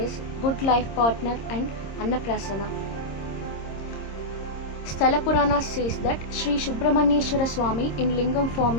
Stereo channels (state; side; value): late; right; 26 ms